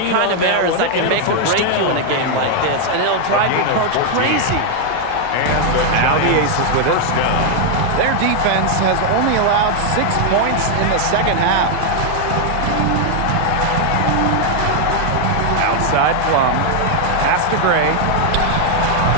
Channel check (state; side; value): different; both; correlation 0.00